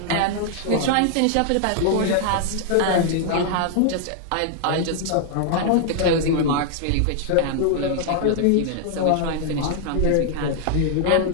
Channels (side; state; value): both; different; correlation -0.01